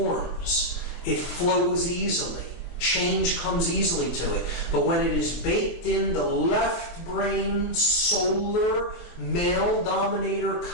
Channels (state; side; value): late; right; 23 ms